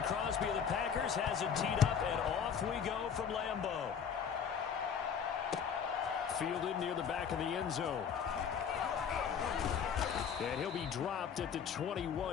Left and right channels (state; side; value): quieter; right; 7.3 dB